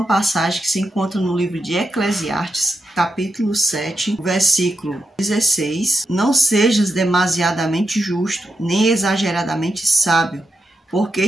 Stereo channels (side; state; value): both; normal; correlation 0.86